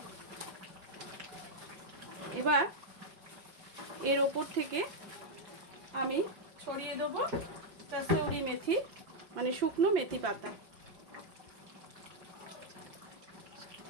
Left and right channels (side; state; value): left; late; 5.8 ms